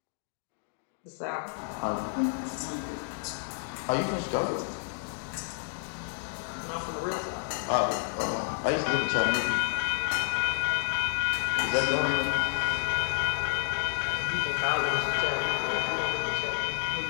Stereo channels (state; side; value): silent; right; digital silence